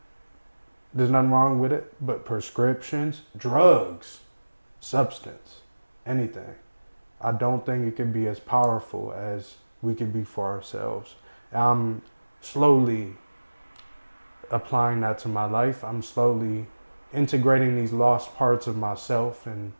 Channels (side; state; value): both; inverted; correlation -1.00